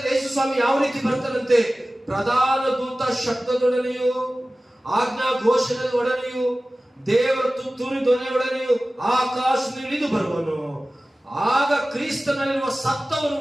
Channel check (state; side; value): normal; both; correlation 0.97